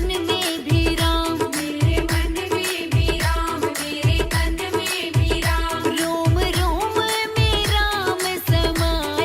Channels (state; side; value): identical; both; correlation 1.00